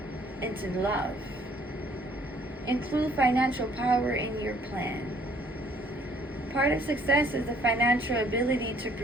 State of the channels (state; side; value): normal; both; correlation 0.61